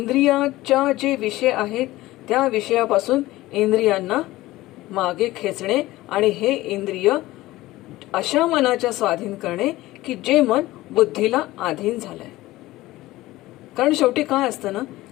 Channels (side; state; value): right; quieter; 17.6 dB